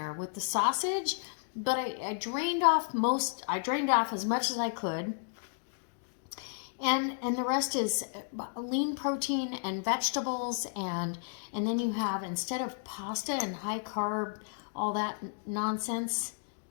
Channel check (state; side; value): silent; right; digital silence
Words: with the sausage, but I drained off as much as I could. And the rest is lean protein and vegetables, and then you have, instead of pasta and high carb, all that nonsense